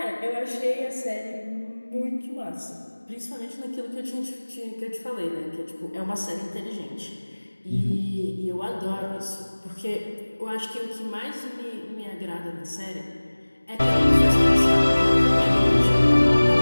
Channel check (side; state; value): both; inverted; correlation -1.00